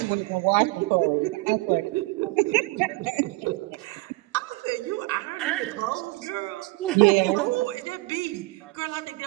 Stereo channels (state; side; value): quieter; left; 22.1 dB